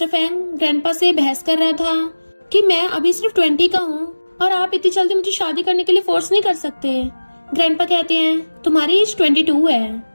Fang grandpa से बहस कर रहा था कि मैं अभी सिर्फ 20 का हूँ और आप इतनी जल्दी मुझे शादी करने के लिए फोर्स नहीं कर सकते। ग्रैंडपा कहते हैं तुम्हारी एज 22 है,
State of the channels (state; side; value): inverted; both; correlation -1.00